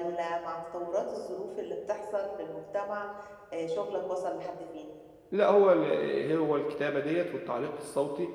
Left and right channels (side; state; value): both; identical; correlation 1.00